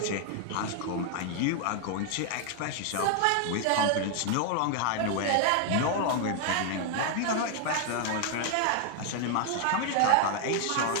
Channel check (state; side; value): different; both; correlation 0.00